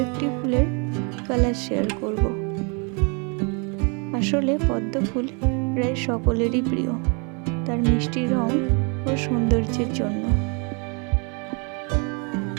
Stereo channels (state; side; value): quieter; left; 35.0 dB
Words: একটি ফুলের কালার শেয়ার করব। আসলে পদ্ম ফুল প্রায় সকলেরই প্রিয়, তার মিষ্টি রং ও সৌন্দর্যের জন্য।